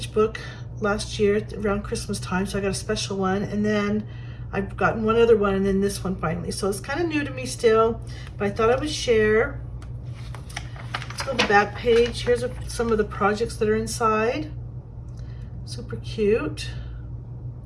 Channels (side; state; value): both; identical; correlation 1.00